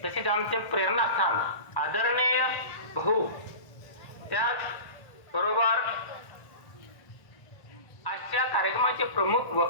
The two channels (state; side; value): late; right; 1.0 ms